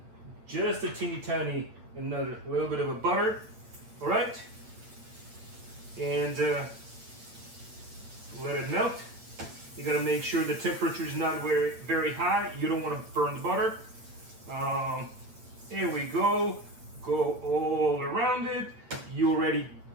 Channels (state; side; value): late; left; 8.8 ms